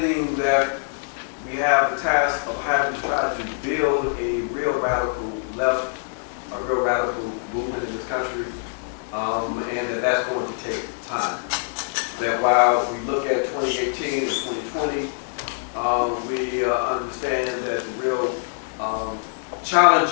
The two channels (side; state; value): right; silent; digital silence